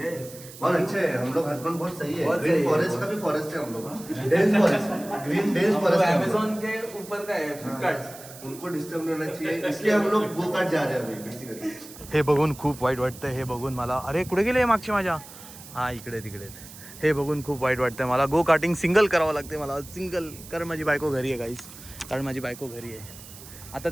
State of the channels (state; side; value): noise; right; hiss, 17 dB below the sound